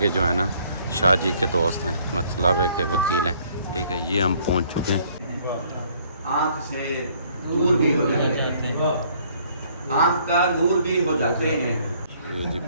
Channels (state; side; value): inverted; both; correlation -0.62